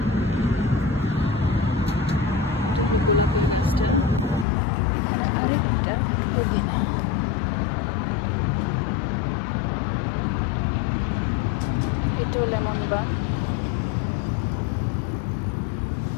এটা গোলাপি গাছটা, এটা পুদিনা। এটাও লেমন বাম,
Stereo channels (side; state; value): right; drops out; at 4.5 s